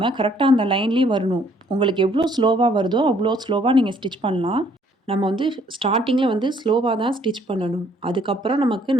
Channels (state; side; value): normal; both; correlation 0.63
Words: கரெக்டாக அந்த லைன்லேயே வரணும். உங்களுக்கு எவ்வளோ ஸ்லோவாக வருதோ அவ்வளோ ஸ்லோவாக நீங்கள் ஸ்டிச் பண்ணலாம். நம்ம வந்து ஸ்டார்டிங்கில் வந்து ஸ்லோவாக தான் ஸ்டிச் பண்ணணும். அதுக்கப்புறம் நமக்கு